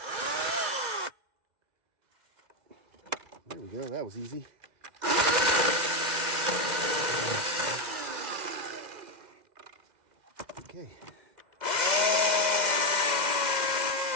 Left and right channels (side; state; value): left; late; 2.0 ms